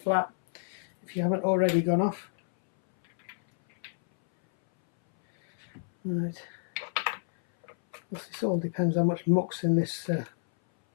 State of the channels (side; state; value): right; silent; 59 dB below the other